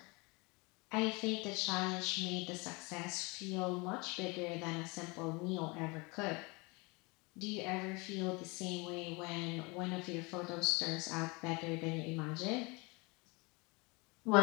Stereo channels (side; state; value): right; quieter; 27.3 dB